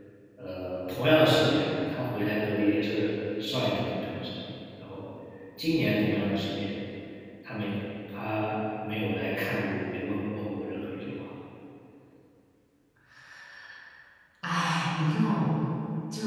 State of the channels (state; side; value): identical; both; correlation 1.00